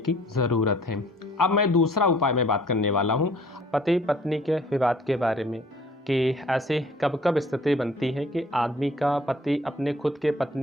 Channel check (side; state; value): both; normal; correlation 0.55